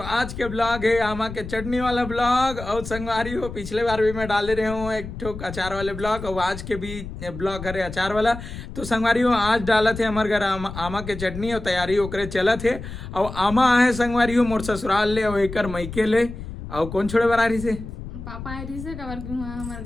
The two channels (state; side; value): noise; left; rumble, 10 dB below the sound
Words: के ब्लॉग है आमा के चटनी वाला ब्लॉग। और संगवारी हो, पिछले बार भी मैं डाले रहे हूँ एक ठोक अचार वाले ब्लॉग, और आज के भी ब्लॉग है अचार वाला। तो संगवारी हो, आज डाला थे हमारे घर आमा के चटनी और तैयारी ओकरे चला थे। और आमा है संगवारी हो मोर ससुराल ले और एकर मैके ले। और कौन छोड़े बरारी से पापा आई से कवर हमारे